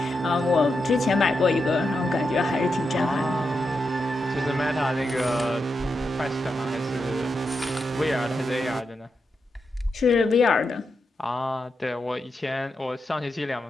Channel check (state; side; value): normal; both; correlation 0.86